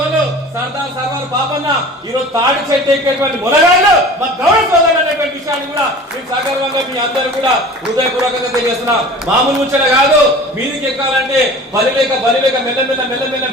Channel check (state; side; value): normal; both; correlation 0.41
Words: సర్దార్ సర్వార్ బాబన్న ఈరోజు తాడి చెట్టు ఎక్కేటువంటి మునగాళ్ళు మా గౌరవ సోదరులు అనేటువంటి విషయాన్ని కూడా మేము సగర్వంగా మీ అందరూ కూడా హృదయపూర్వకంగా తెలియజేస్తున్నాం. మామూలు ముచ్చట కాదు, మీదికి ఎక్కాలంటే బలిలేక